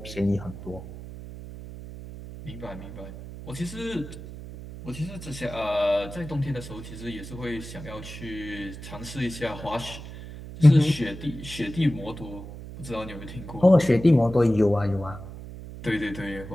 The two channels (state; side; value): noise; right; hum, 12 dB below the sound